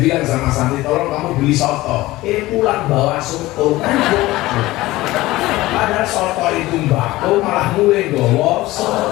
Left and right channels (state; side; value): quieter; right; 18.2 dB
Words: sama santri, tolong kamu beli soto. Pulang bawa soto kan. Padahal soto itu mbako, malah mulai bawa